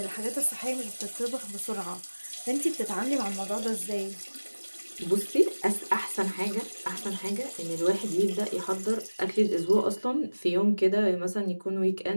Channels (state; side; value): inverted; both; correlation -1.00